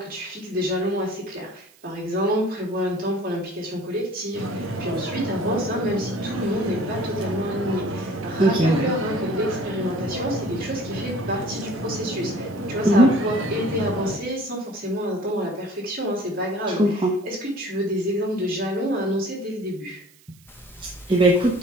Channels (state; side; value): noise; right; hiss, 28 dB below the sound